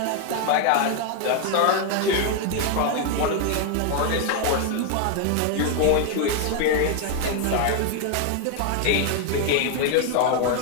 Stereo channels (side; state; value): both; different; correlation 0.00